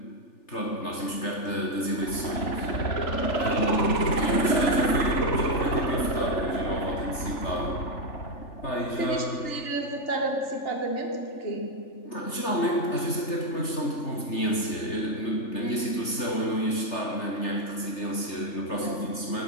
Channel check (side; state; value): right; late; 3.4 ms